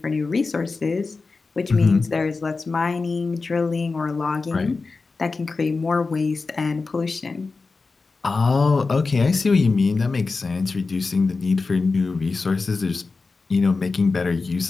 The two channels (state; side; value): quieter; right; 4.1 dB